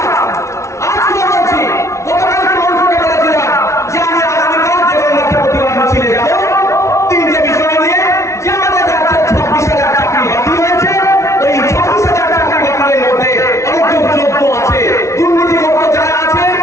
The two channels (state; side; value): late; right; 0.14 ms